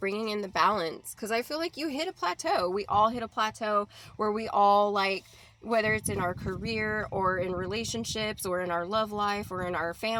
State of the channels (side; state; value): both; identical; correlation 1.00